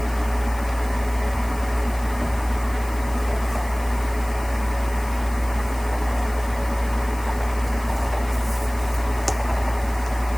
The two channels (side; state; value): left; noise; hiss, 18 dB below the sound